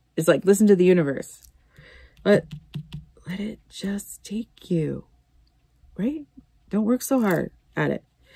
It's like, listen to the universe. Let it just take you. Right? Don't work so hard at it.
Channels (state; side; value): identical; both; correlation 1.00